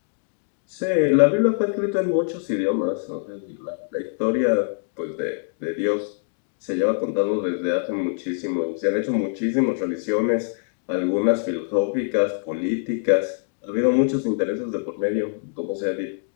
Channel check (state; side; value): silent; right; digital silence